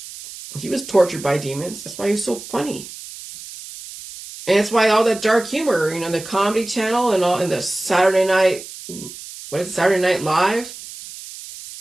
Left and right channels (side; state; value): right; noise; hiss, 14 dB below the sound